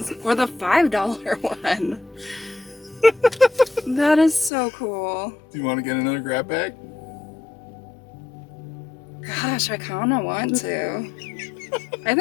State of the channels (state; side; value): drops out; right; at 4.5 s